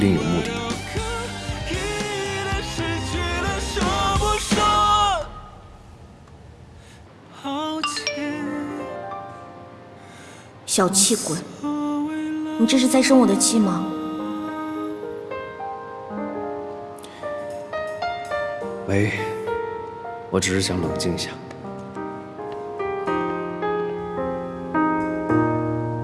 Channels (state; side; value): identical; both; correlation 1.00